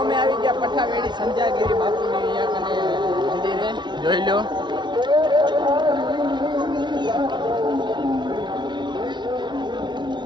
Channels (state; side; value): late; left; 0.22 ms